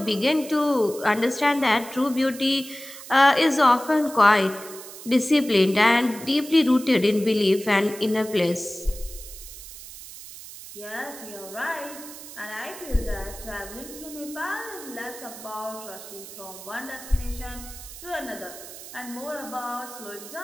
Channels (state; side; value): noise; right; hiss, 14 dB below the sound